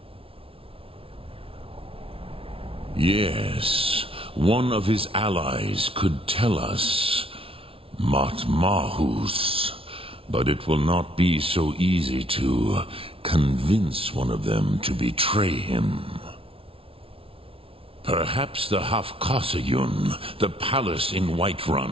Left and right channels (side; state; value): left; late; 0.26 ms